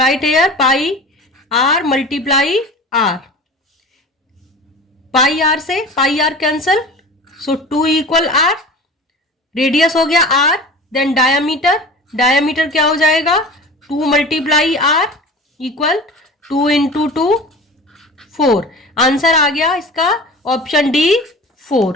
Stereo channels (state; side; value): normal; both; correlation 0.37